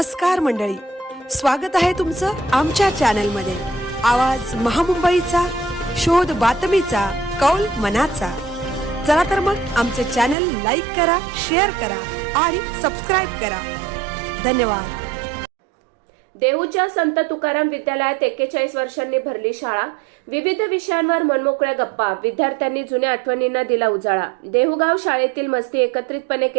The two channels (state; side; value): drops out; left; at 10.4 s